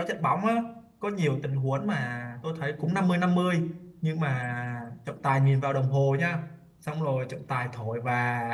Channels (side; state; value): both; identical; correlation 1.00